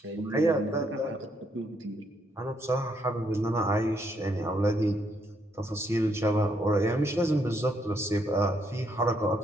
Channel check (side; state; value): both; normal; correlation 0.74